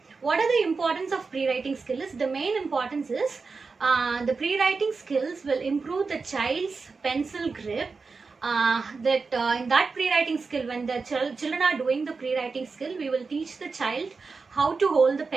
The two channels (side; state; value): left; quieter; 4.5 dB